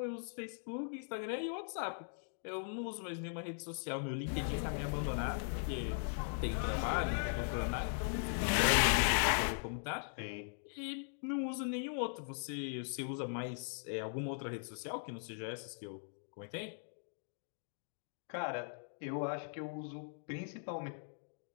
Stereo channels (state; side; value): silent; right; digital silence